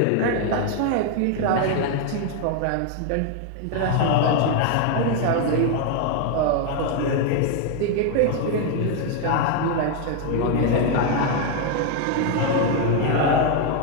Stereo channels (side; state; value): both; different; correlation 0.01